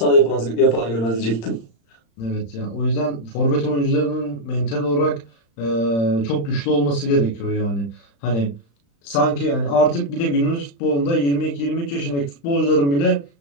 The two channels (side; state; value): right; late; 35 ms